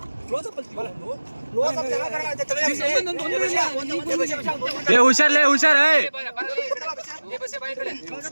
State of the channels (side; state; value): both; inverted; correlation -1.00